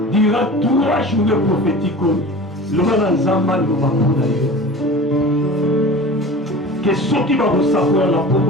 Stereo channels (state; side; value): normal; both; correlation 0.37